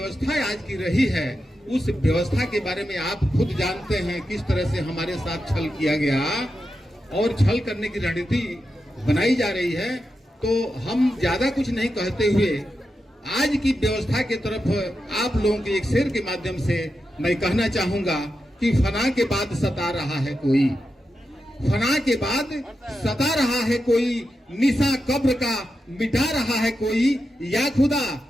आज की रही है, उस व्यवस्था के बारे में आप खुद जानते हैं किस तरह से हमारे साथ छल किया गया और छल करने की रणनीति बनाई जा रही है। तो हम ज्यादा कुछ नहीं कहते हुए आज की व्यवस्था के तरफ आप लोगों के एक शेर के माध्यम से मैं कहना चाहूंगा कि फना के बाद सता रहा है कोई, फना के बाद सता रहा है कोई, निशा कब्र का मिटा रहा है कोई, या खुदा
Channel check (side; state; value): both; normal; correlation 0.88